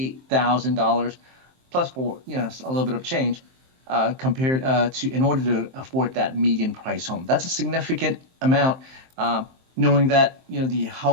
plus for a little bit of change compared to in order to afford that median price home. That's a significant amount. Knowing that the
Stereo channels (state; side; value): late; left; 23 ms